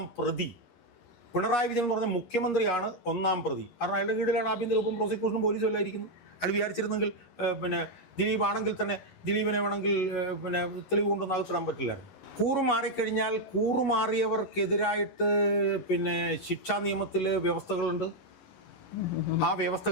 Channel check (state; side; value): late; right; 11 ms